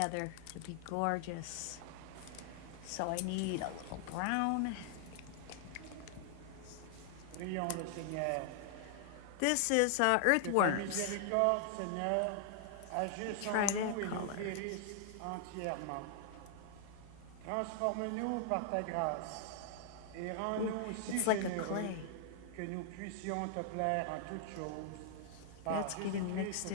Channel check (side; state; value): both; different; correlation 0.00